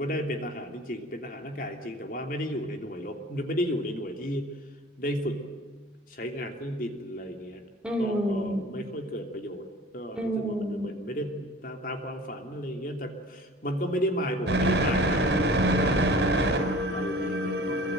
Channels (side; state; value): both; normal; correlation 0.45